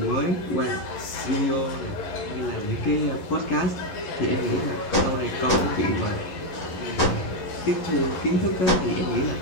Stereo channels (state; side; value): late; right; 11 ms